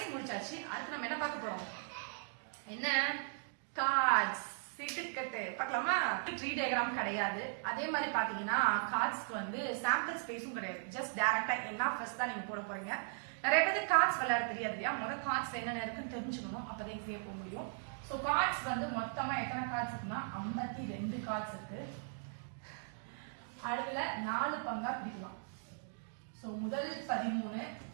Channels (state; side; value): silent; left; digital silence